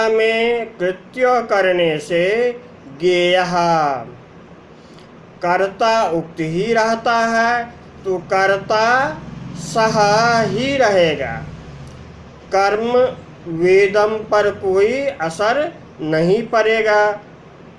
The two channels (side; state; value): both; identical; correlation 1.00